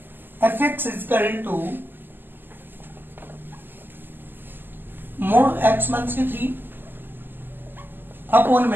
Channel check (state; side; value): late; left; 0.093 ms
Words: f x is equal to mod x minus की 3 अपॉन